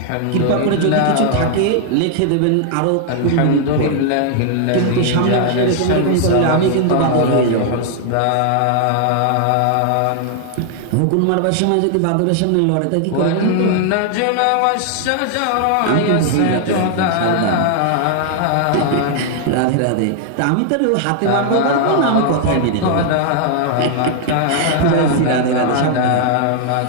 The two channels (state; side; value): different; both; correlation 0.00